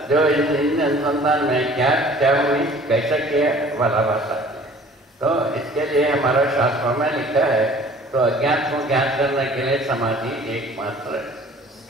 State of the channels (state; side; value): normal; both; correlation 0.50